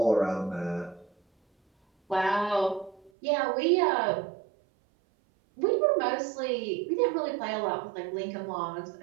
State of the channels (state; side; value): drops out; left; at 3.1 s